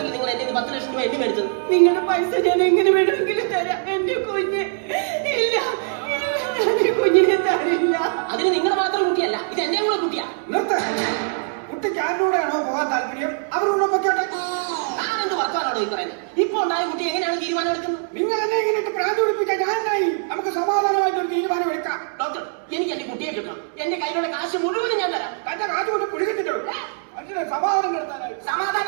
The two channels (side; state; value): left; silent; digital silence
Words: നിങ്ങൾ എന്റെ 10 ലക്ഷം രൂപ എണ്ണി മേടിച്ചത്. നിങ്ങളുടെ പൈസ ഞാൻ എങ്ങനെ വേണമെങ്കിലും തരാം. എന്റെ കുഞ്ഞ് ഇല്ല, ഞാൻ എന്റെ കുഞ്ഞിനെ തരില്ല. അതിന് നിങ്ങളുടെ മാത്രം കുട്ടിയല്ല, ഇത് എന്റെ കൂടെ കുട്ടിയാ. നിർത്ത. കുട്ടിക്ക് ആരോടെയാണോ പോകാൻ താല്പര്യം അവരോട് പൊക്കോട്ടെ. ഞാൻ എന്ത് വർത്താനാണോ ഈ പറയുന്നത്? ഇപ്പൊ ഉണ്ടായ കുട്ടി എങ്ങനെയാണ് തീരുമാനം എടുക്കുന്നത്? നിങ്ങൾ എന്നെ ഇങ്ങനെ പ്രാന്ത് പിടിപ്പിക്കാൻ ഞാനായി. നമുക്ക് സമാധാനമായിട്ട് ഒരു തീരുമാനം എടുക്കാം. ഡോക്ടർ, എനിക്ക് എന്റെ കുട്ടിയെ കിട്ടണം. എന്റെ കയ്യിലുള്ള കാശ് മുഴുവനും ഞാൻ തരാം. തന്റെ കാശ് കൊണ്ട് പിടിച്ചിട്ടുള്ളൂ. അതിന് സമാധാനം നടത്താനായി.